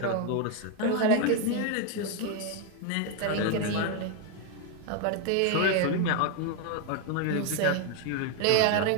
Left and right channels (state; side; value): different; both; correlation 0.01